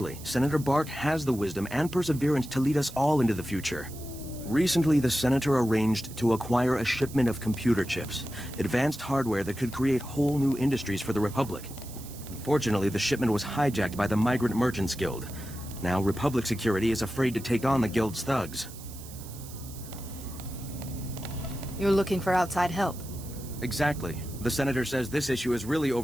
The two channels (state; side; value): noise; right; hiss, 16 dB below the sound